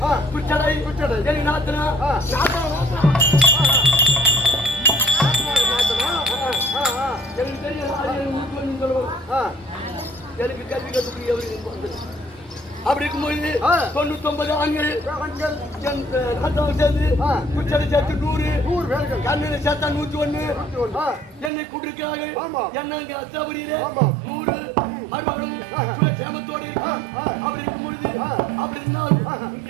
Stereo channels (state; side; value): drops out; left; at 21.5 s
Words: குச்சடை எனக்கு நாத்தனா எனக்கு தெரியும் எனக்கு கல்வி கற்றுக்கூடிய அப்படி இருக்கும்போது 99 ஆண்கள் சேர்ந்து குச்சடை சேர்த்து 100 பேர்கள் கண்ணில சேர்த்தா 101 என்னை கூட்டிருக்கிறார்கள் என்ன அங்க அச்சாபுரியில 100 மருமகளும் சேமத்தோடு இருக்கும் அப்படி இருக்கும் பொழுது அப்படி இருந்தாலும் இங்க